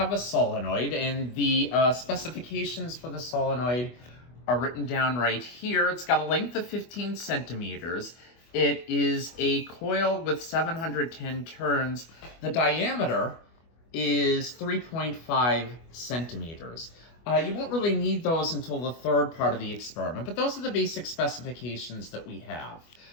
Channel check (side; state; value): right; late; 25 ms